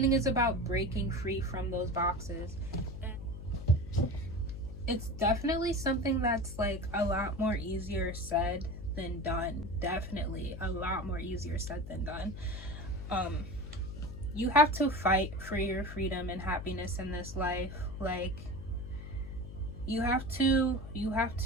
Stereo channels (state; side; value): noise; left; hum, 10 dB below the sound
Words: is about breaking free from those boxes. It's definitely something that's like a lot more easier said than done. Definitely a lot more easier said than done. You have to fight for your freedom and happiness in this life. Like you have to